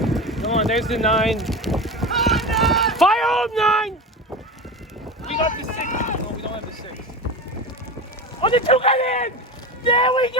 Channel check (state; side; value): normal; both; correlation 0.25